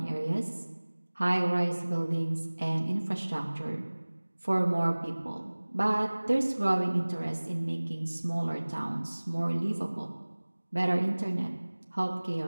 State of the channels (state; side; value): inverted; both; correlation -1.00